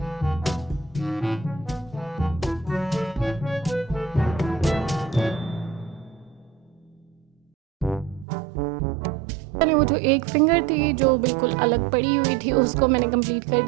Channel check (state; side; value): drops out; left; at 8.2 s